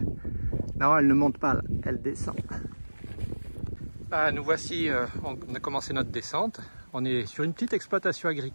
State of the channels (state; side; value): inverted; both; correlation -1.00